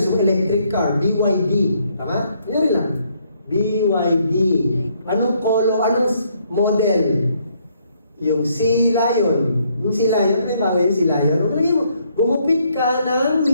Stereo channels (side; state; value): both; inverted; correlation -0.71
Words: gusto mong electric car, BYD. Tama? Kunyari lang. BYD. Anong color, anong model? Yung Sea Lion. Yung Sea Lion, ano yung bagay yung Sea Lion? Huwag lagi mo, gumupit ka ng